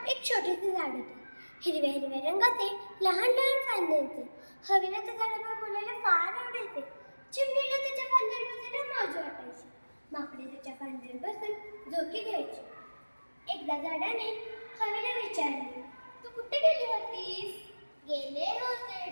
एक छोटेसे झाड होते. हिरव्या हिरव्या रंगाचे लहान लहान फांदे होते. हवेला त्या झाडावर बोलायला फार आवडायचे. चिमणीला त्याच्या फांद्यावर बसायला मजा वाटायची. माकडे त्याच्या फांद्यावर बसून झोके घ्यायचे. एकदा झाडाने हवेला विचारले, तू कुठे गेली होतीस? गेले होते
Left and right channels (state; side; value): inverted; both; correlation -1.00